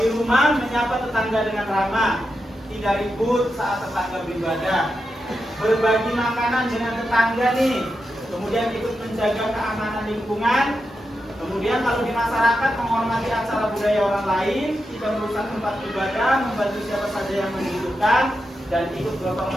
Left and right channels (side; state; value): both; normal; correlation 0.88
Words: rumah, menyapa tetangga dengan ramah, tidak ribut saat tetangga beribadah, berbagi makanan dengan tetangga nih, kemudian ikut menjaga keamanan lingkungan. Kemudian kalau di masyarakat, menghormati acara budaya orang lain, tidak merusak tempat ibadah, membantu siapa saja yang membutuhkan, dan ikut gotong